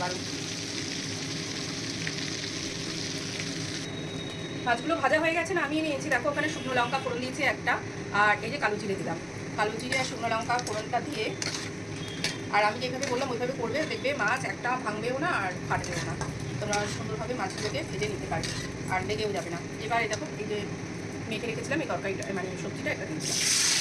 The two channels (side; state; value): both; identical; correlation 1.00